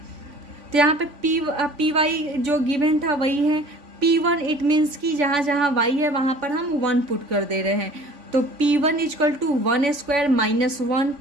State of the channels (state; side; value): late; left; 3.5 ms